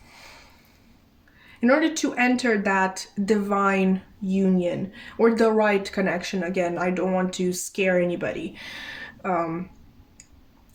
order to enter that divine union or the right connection, again, I don't want to scare anybody.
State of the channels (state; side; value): identical; both; correlation 1.00